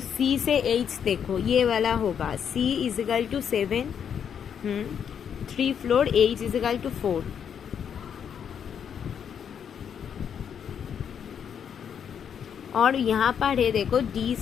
से एच देखो ये वाला होगा, C is equal to 7, 3 floor, H is equal to 4। और यहाँ पर है देखो डी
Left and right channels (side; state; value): right; quieter; 8.0 dB